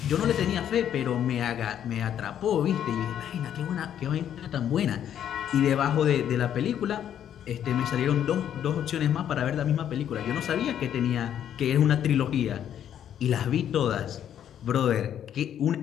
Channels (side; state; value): right; quieter; 9.9 dB